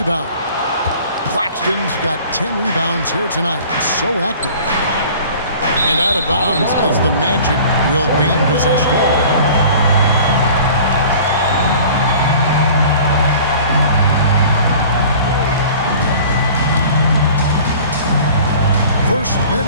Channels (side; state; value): both; inverted; correlation -0.46